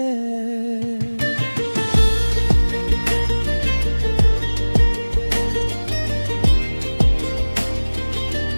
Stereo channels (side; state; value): both; inverted; correlation -1.00